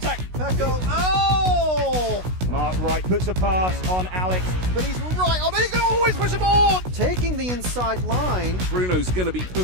Pecco, oh! Marc Wright puts a pass on Alex. But he's right on, he can always push him on! Taking the inside line. Bruno's going to be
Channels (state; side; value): late; left; 16 ms